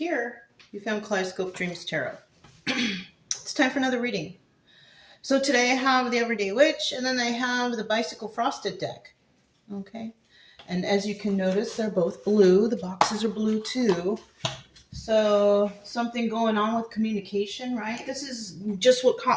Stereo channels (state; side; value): identical; both; correlation 1.00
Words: you found Kaleidoscope Dreams Tarot. It's time for another reading. So today I have the Everyday Witch, and then I have the Bicycle Frosted deck. Okay, and as you can notice, they're both blue. The boxes are blue too. So something going on with communication, right? This is just what